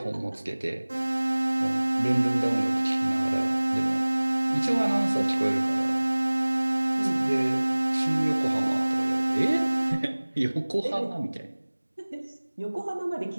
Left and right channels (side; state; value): both; inverted; correlation -1.00